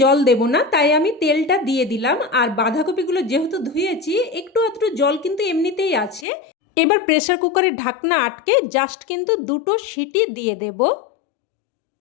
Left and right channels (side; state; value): right; drops out; at 6.2 s